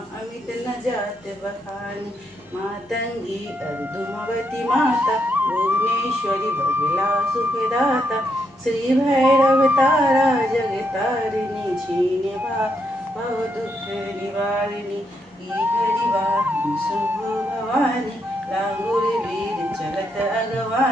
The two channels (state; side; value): normal; both; correlation 0.78